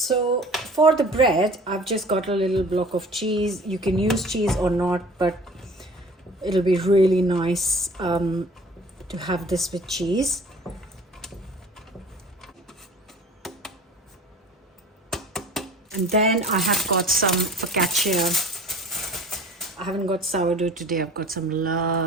for the bread, I've just got a little block of cheese. You can use cheese or not, but it'll be really nice to have this with cheese. And then I have got some focaccia. I haven't got sourdough today. I've got some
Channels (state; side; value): normal; both; correlation 0.46